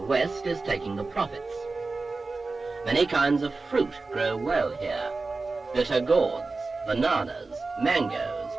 is taking the profits. Many kinds of fruit grow well here. Bitter gourds, bananas, mangoes,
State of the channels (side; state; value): left; quieter; 3.7 dB